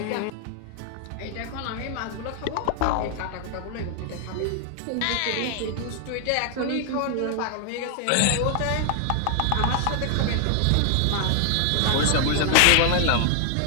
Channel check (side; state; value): both; different; correlation 0.00